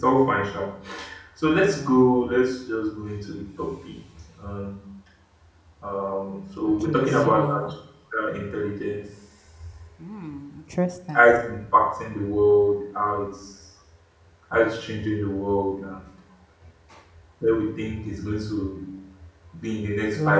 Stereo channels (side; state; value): both; identical; correlation 1.00